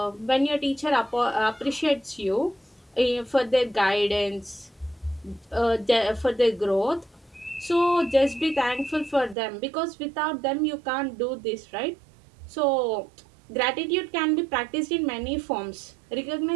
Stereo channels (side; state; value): left; drops out; at 9.3 s